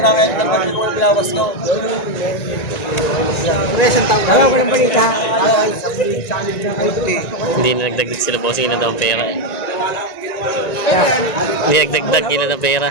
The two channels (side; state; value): right; late; 1.9 ms